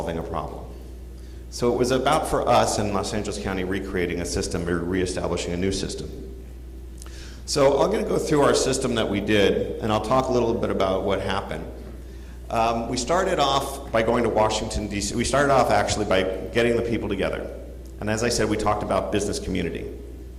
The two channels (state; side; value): identical; both; correlation 1.00